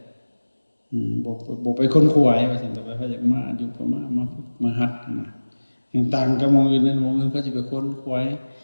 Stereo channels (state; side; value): inverted; both; correlation -1.00